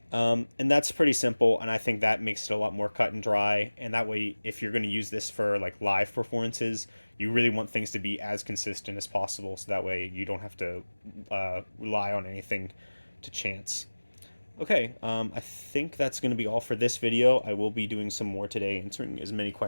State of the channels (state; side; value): inverted; both; correlation -1.00